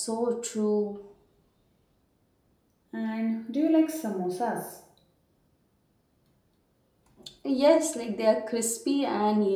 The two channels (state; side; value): identical; both; correlation 1.00